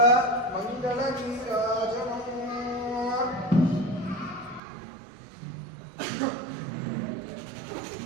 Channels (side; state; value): left; drops out; at 4.6 s